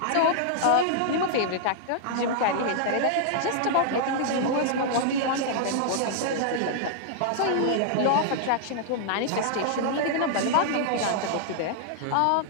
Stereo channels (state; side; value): different; both; correlation -0.01